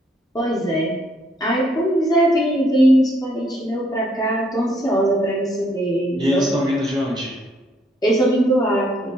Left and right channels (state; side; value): normal; both; correlation 0.69